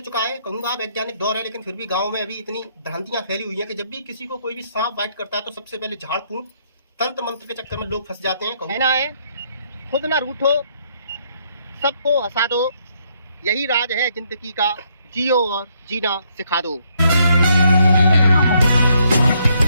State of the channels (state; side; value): inverted; both; correlation -0.72